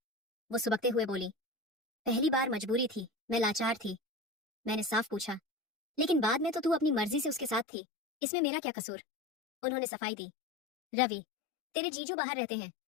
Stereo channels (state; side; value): drops out; right; at 7.7 s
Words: वो सुबकते हुए बोली, पहली बार मजबूरी थी, मैं लाचार थी। मैंने साफ पूछा, लेकिन बाद में तो तू अपनी मर्जी से उसके साथ थी, इसमें मेरा क्या कसूर? उन्होंने सफाई दी, रवि, तेरे जीजू बाहर रहते हैं,